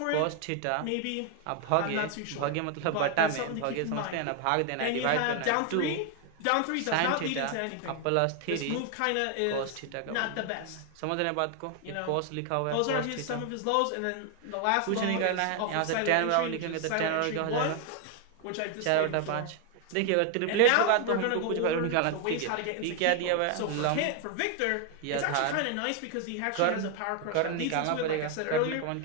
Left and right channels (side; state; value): both; different; correlation 0.01